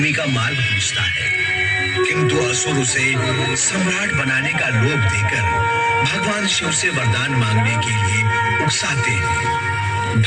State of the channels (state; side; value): identical; both; correlation 1.00